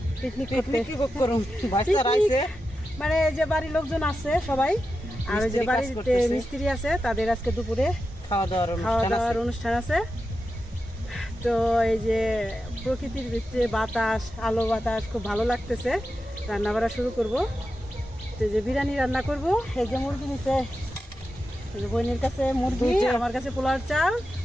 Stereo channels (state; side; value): normal; both; correlation 0.90